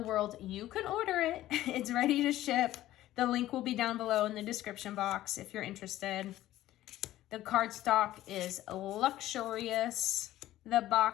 world. You can order it. It's ready to ship. The link will be down below in the description box if you're interested. The cardstock is luxurious. The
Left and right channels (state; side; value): quieter; right; 14.5 dB